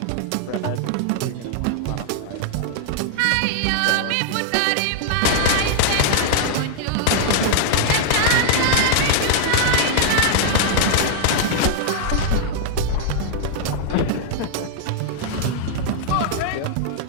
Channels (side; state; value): both; different; correlation -0.01